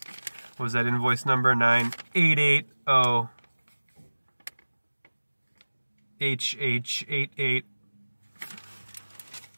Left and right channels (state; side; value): inverted; both; correlation -1.00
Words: What was that invoice number? 9880 HH88.